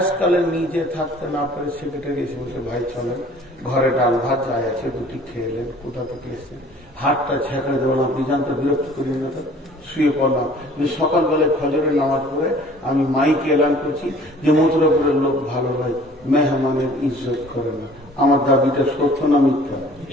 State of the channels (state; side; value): normal; both; correlation 0.52